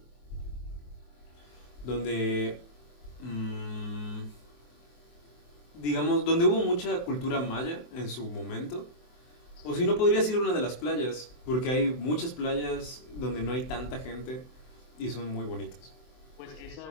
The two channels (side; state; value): right; late; 24 ms